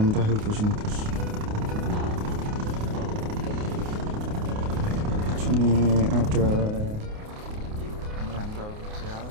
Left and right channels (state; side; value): late; left; 28 ms